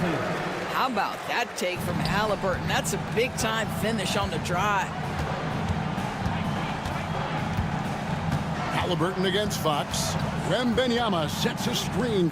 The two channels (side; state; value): both; identical; correlation 1.00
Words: How about that take from Halliburton? That's a big-time finish on the drive. Halliburton against Fox. Wembanyama sets a screen